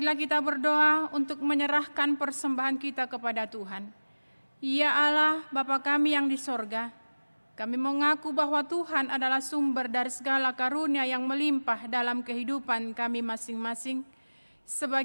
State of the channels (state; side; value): inverted; both; correlation -1.00